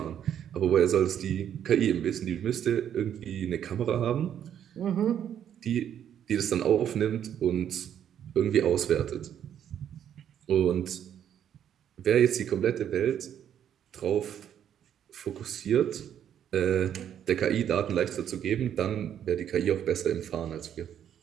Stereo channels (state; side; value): quieter; left; 9.6 dB